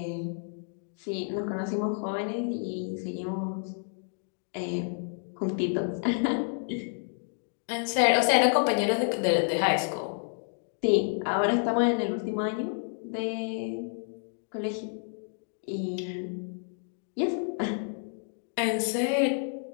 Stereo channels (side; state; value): right; silent; 58 dB below the other